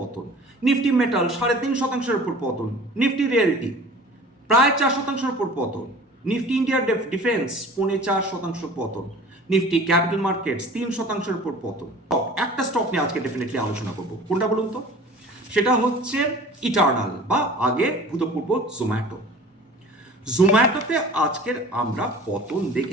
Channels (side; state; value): both; normal; correlation 0.43